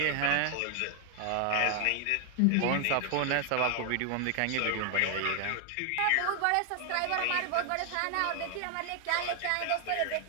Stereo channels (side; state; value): both; different; correlation 0.00